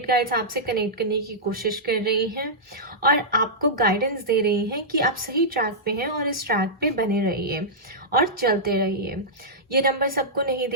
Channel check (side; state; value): both; normal; correlation -0.12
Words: गाइड्स आपसे कनेक्ट करने की कोशिश कर रही हैं और आपको गाइडेंस दे रही हैं कि आप सही ट्रैक पे हैं और इस ट्रैक पे बने रहिए और चलते रहिए। ये नंबर सबको नहीं